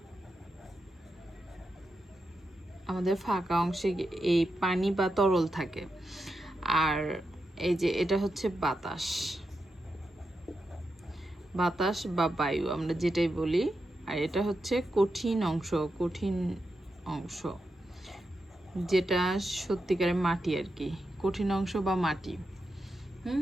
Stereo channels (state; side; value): normal; both; correlation 0.87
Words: আমাদের ফাঁকা অংশে এই পানি বা তরল থাকে। আর এই যে এটা হচ্ছে বাতাস, বাতাস বা বায়ু আমরা যেটাই বলি। আর এটা হচ্ছে কঠিন অংশ, কঠিন অংশ যেটা সত্যিকারের মাটি আর কি, কঠিন অংশ বা মাটি।